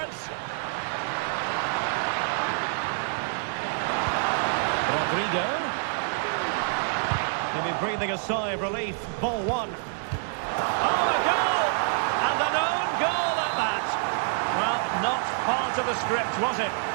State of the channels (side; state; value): left; silent; 60 dB below the other